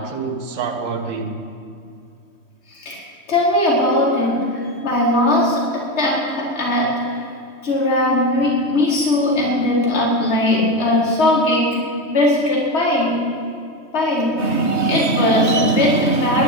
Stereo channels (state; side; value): late; right; 3.2 ms